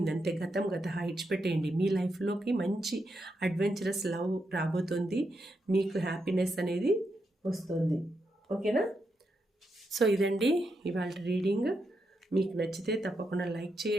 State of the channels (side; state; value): both; normal; correlation 0.83